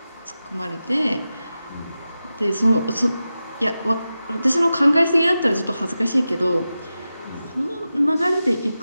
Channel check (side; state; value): both; inverted; correlation -0.93